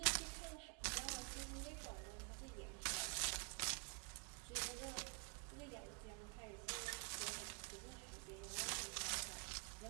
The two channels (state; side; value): quieter; left; 38.3 dB